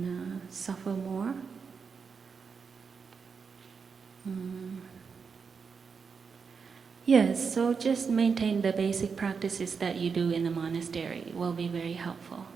suffer more. Yes, so just maintain the basic practices that you do in the monastery will be very helpful.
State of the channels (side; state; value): left; quieter; 5.7 dB